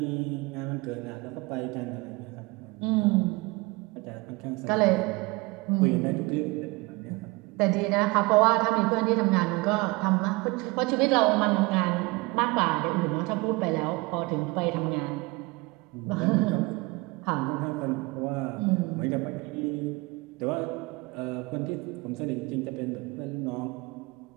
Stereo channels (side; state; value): left; quieter; 24.3 dB